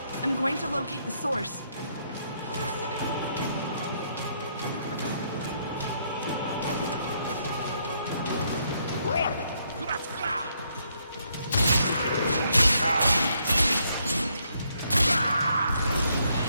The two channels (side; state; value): both; inverted; correlation -0.73